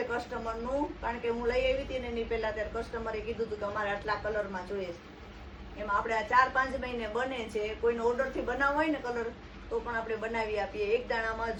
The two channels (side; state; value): both; identical; correlation 1.00